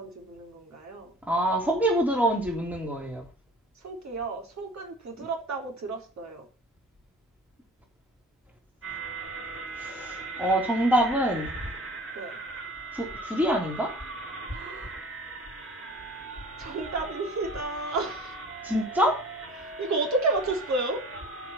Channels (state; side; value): normal; both; correlation 0.44